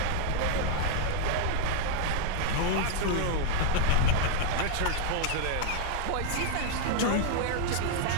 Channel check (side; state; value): both; different; correlation 0.00